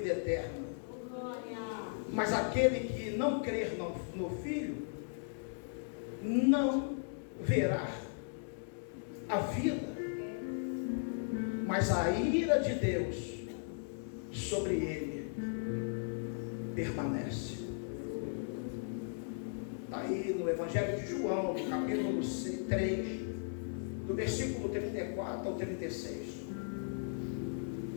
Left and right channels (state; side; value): silent; right; 53 dB below the other